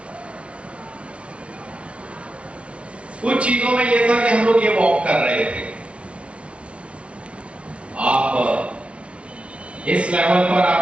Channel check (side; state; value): left; late; 0.060 ms